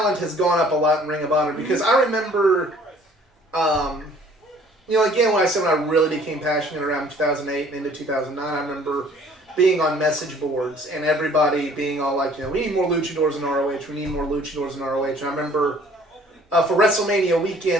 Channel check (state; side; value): normal; both; correlation 0.55